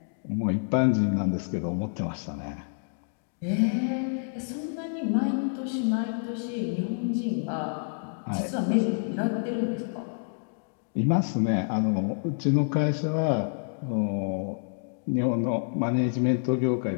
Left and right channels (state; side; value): silent; right; digital silence